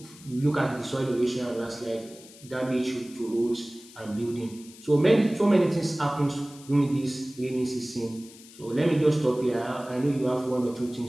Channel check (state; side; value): noise; left; hiss, 20 dB below the sound